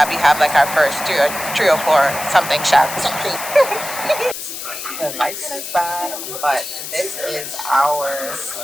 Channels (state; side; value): noise; left; hiss, 8 dB below the sound